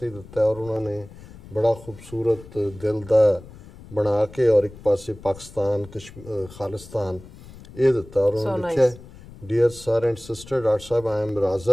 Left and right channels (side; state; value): left; noise; rumble, 19 dB below the sound